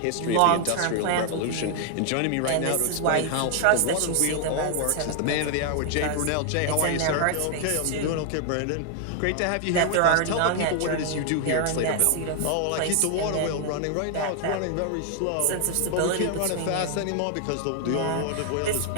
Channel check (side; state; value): both; different; correlation 0.00